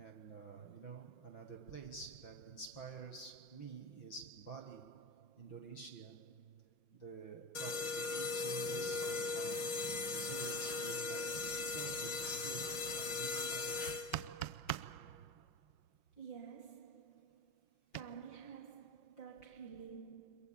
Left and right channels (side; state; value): right; late; 5.7 ms